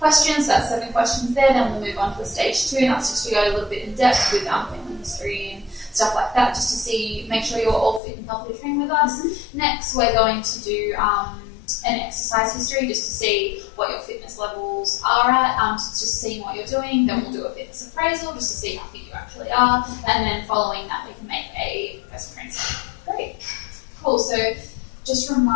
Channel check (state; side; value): drops out; right; at 8.0 s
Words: That's 7 questions there. Then we'll move on to a stage 2, and that's just to go a little bit in depth with family history and stuff like that, just to make sure you're all fit and healthy to train with us. Next, we're going to do an exercise history just to see what your fitness levels are at, just seeing what you're doing. Then we'll do a fitness appraisal just to see how fit you actually are, and then following that we can make a personal training session. Great. Cool. So just